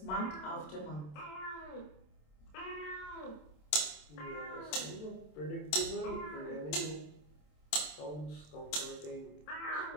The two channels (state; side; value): late; right; 27 ms